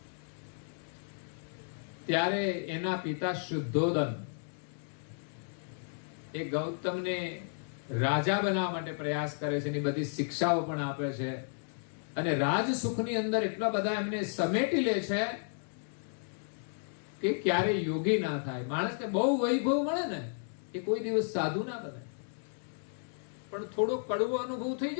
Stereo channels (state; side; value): silent; right; digital silence